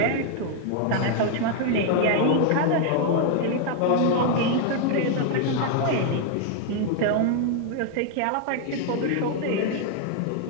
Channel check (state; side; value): different; both; correlation 0.00